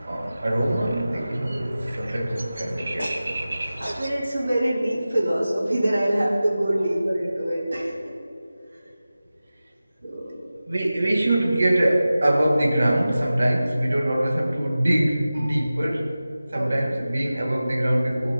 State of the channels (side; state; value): both; inverted; correlation -0.95